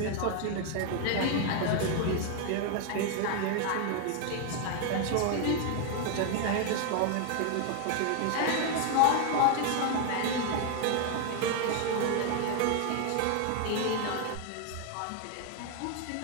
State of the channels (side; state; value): both; different; correlation 0.00